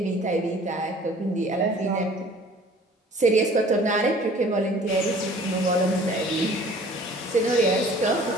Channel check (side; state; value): both; normal; correlation 0.50